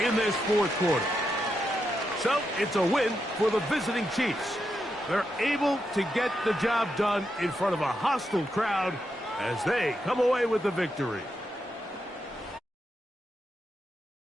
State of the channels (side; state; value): both; normal; correlation 0.84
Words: in this 4th quarter. So it's a win for the visiting Chiefs. They're able to get the job done in front of a hostile crowd as they come away with the victory.